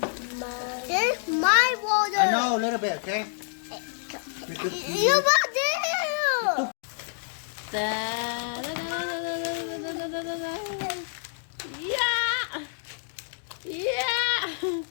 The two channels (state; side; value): silent; right; digital silence